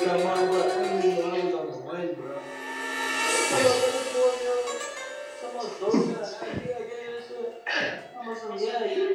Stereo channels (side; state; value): both; identical; correlation 1.00